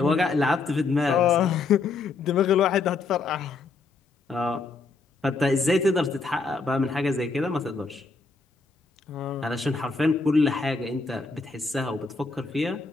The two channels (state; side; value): quieter; right; 4.0 dB